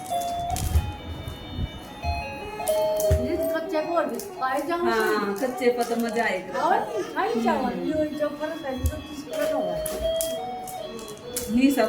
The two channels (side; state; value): both; identical; correlation 1.00